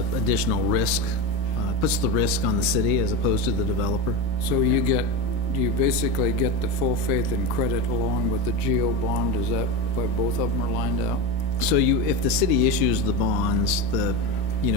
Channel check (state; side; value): late; right; 1.6 ms